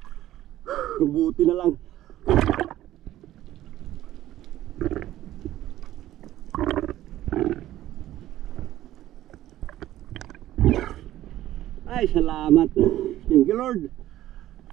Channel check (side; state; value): left; quieter; 14.0 dB